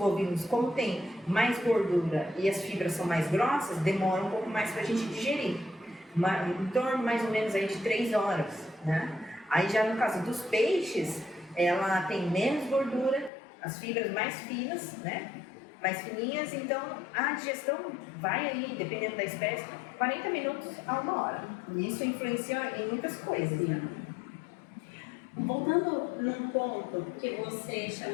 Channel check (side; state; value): right; drops out; at 13.3 s